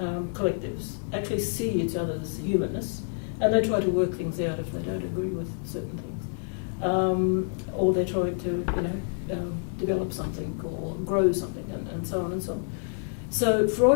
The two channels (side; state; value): right; silent; digital silence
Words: actually see each other's humanness, and they try to work things out if they don't agree with certain things, or they're trying to develop something or grow something and so on and so on. So